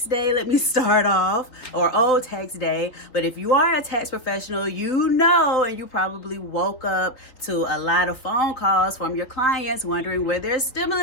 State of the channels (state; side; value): late; right; 3.9 ms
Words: day, let me start off, or old tax day. But if you are a tax professional, you know, and you probably woke up to a lot of phone calls from your clients wondering where their